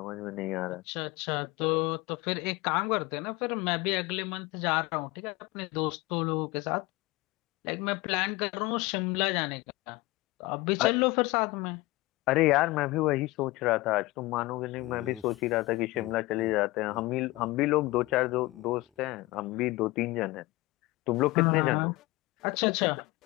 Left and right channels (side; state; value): right; quieter; 21.0 dB